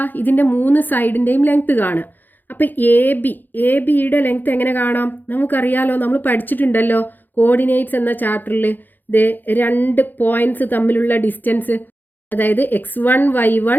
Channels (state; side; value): late; right; 0.088 ms